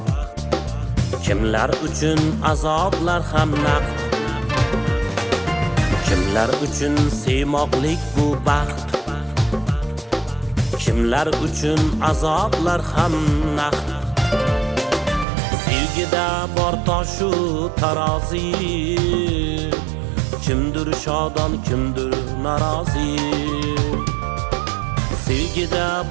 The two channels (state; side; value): drops out; left; at 15.2 s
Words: kimlar uchun azoblar ham naqd. Kimlar uchun sevmoqlik bu baxt, kimlar uchun azoblar ham naqd. Sevgida bor toshu tarozi, kimdir shodon, kimdir norozi. Sevgida